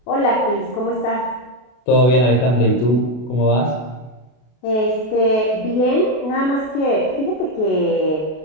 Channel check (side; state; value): right; late; 32 ms